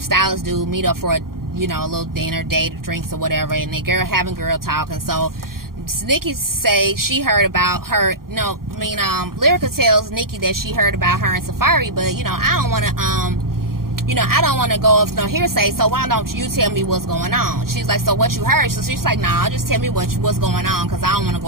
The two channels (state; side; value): late; left; 0.92 ms